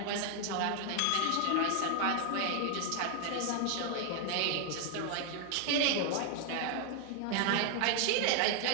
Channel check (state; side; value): different; both; correlation 0.00